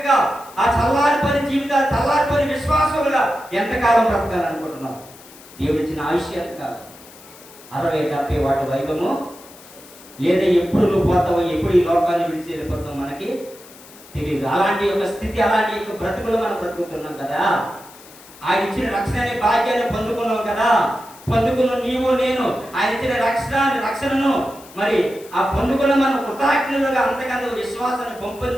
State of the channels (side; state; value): left; noise; hiss, 21 dB below the sound